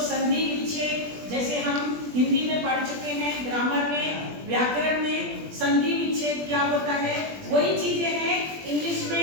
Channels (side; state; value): left; late; 20 ms